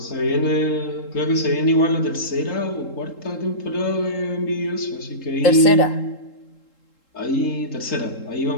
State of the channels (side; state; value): right; late; 3.7 ms